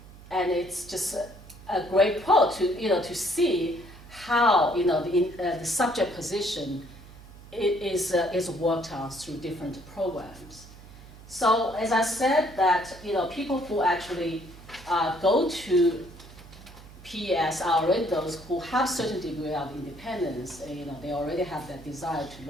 And it's just a great quote to see how the subject position is worked on through different programs. So as I said, that people who actually go to PES are already those who have certain degree of independence. They already have that desire to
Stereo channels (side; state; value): right; noise; hum, 19 dB below the sound